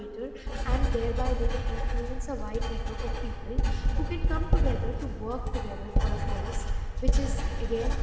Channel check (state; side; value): identical; both; correlation 1.00